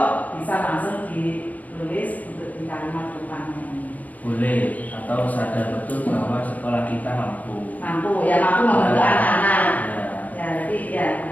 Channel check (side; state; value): right; late; 0.077 ms